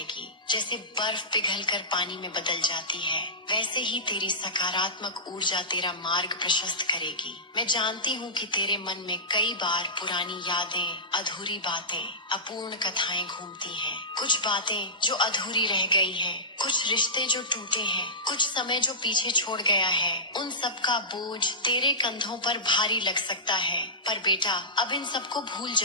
जैसे बर्फ पिघलकर पानी में बदल जाती है, वैसे ही तेरी सकारात्मक ऊर्जा तेरा मार्ग प्रशस्त करेगी। मैं जानती हूँ कि तेरे मन में कई बार पुरानी यादें, अधूरी बातें, अपूर्ण कथाएं घूमती हैं। कुछ बातें जो अधूरी रह गई हैं, कुछ रिश्ते जो टूटे हैं, कुछ समय जो पीछे छोड़ गया है। उन सब का बोझ तेरे कंधों पर भारी लग सकता है, पर बेटा, अब इन सबको भूल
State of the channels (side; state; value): both; normal; correlation -0.17